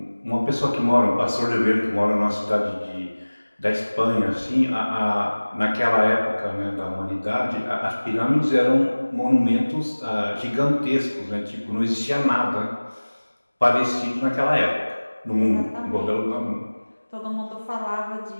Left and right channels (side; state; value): both; inverted; correlation -1.00